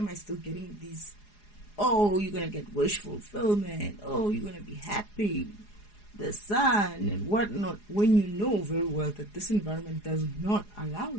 I still getting these? Oh, you're going to get wish fulfillment. Oh, you're going to be happy. The sun and whatnot. When you know very well that this environment does not allow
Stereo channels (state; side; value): late; right; 4.8 ms